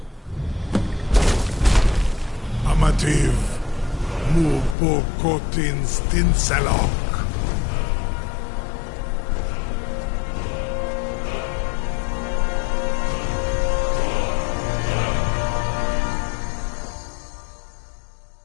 Amativ, Mubokotin Stinselok.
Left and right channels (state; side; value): drops out; right; at 4.8 s